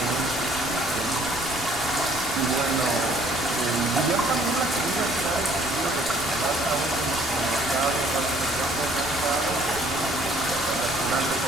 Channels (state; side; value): noise; right; rumble, 16 dB below the sound